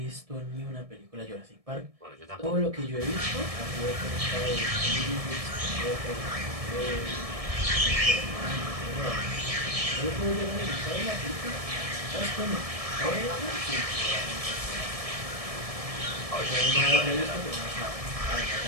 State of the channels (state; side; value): late; left; 1.7 ms